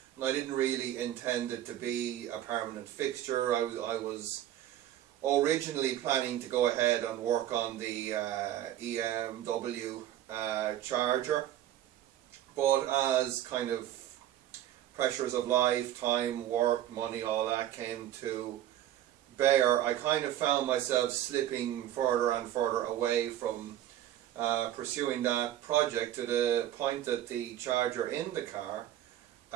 And I didn't really intend it to be a permanent fixture. I was originally planning to go ahead and work on the BMW charger, but as kind of pressures of life, time, work, money, all that came to bear, I kind of found myself slipping further and further away from pursuing that project, to the point that the charger in the car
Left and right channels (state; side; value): quieter; left; 12.3 dB